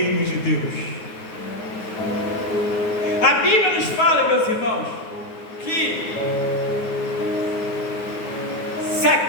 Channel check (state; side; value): late; right; 9.5 ms